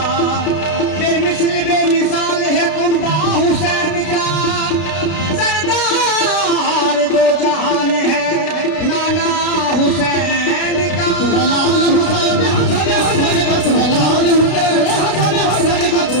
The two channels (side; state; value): right; late; 32 ms